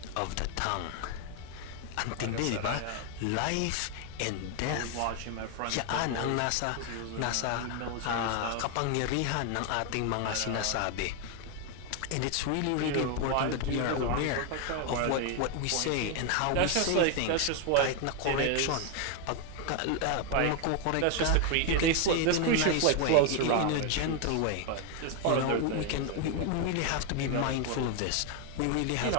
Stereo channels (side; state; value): both; different; correlation 0.01